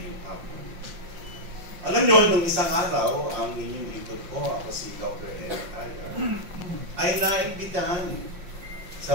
hapon. Alam nyo, nung isang araw, ang inyong lingkod ko, ako si Dr. Eric Taya, ay naimbitahan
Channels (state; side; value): late; left; 5.6 ms